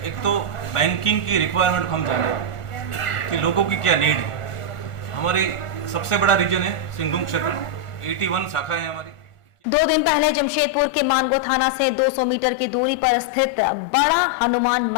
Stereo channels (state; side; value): late; right; 1.4 ms